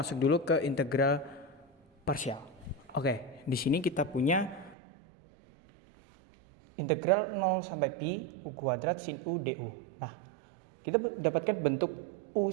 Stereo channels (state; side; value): drops out; left; at 4.8 s